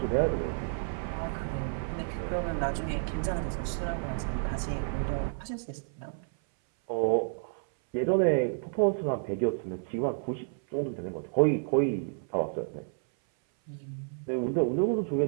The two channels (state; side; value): silent; left; 57 dB below the other